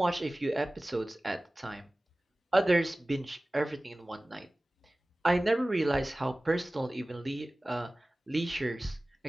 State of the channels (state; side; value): normal; both; correlation 0.98